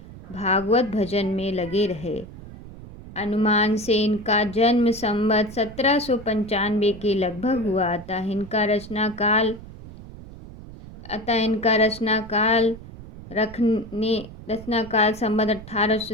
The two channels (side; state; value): right; noise; rumble, 15 dB below the sound